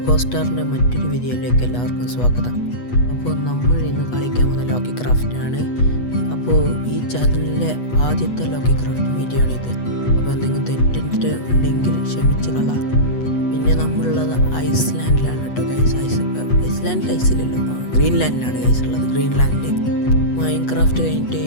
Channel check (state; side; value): late; right; 8.2 ms